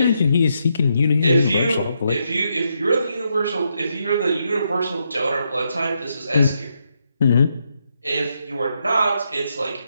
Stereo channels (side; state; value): both; inverted; correlation -0.80